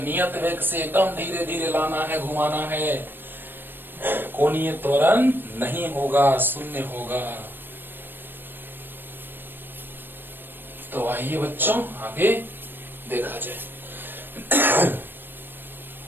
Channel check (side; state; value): left; late; 0.096 ms